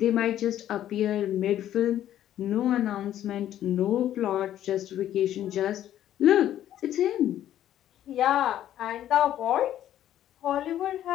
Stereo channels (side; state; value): right; quieter; 11.8 dB